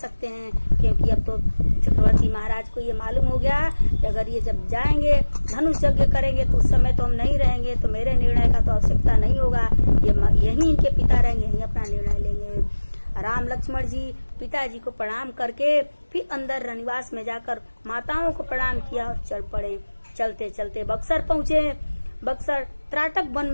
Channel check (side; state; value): both; inverted; correlation -1.00